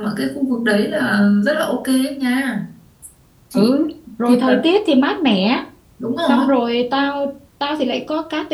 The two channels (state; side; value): identical; both; correlation 1.00